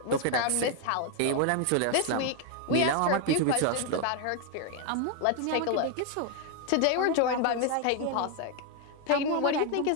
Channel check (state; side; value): different; both; correlation 0.01